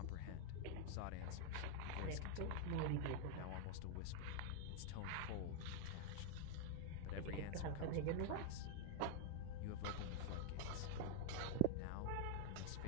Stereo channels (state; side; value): different; both; correlation 0.00